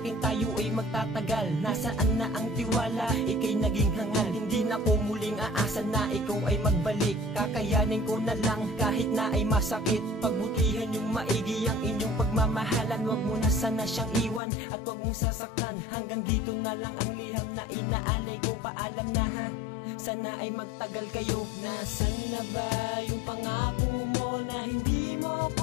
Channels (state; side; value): drops out; right; at 14.4 s